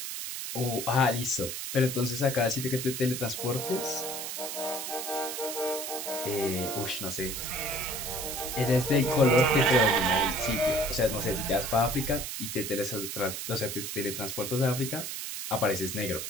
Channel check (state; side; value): noise; right; hiss, 5 dB below the sound